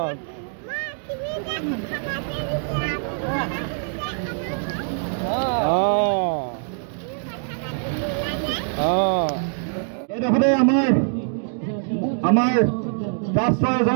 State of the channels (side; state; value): left; silent; 63 dB below the other